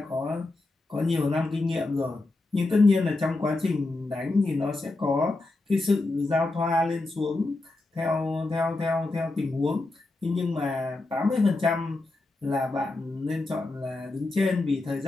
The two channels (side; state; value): right; quieter; 3.1 dB